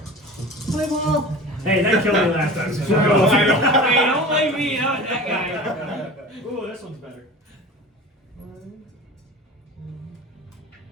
My ball. Hey, that killed me last time. So Hey, don't blame me. Not that guy. Ooh, this one's better.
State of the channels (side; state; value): both; normal; correlation 0.36